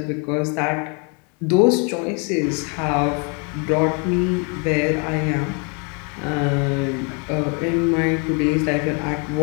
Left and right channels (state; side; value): quieter; right; 35.4 dB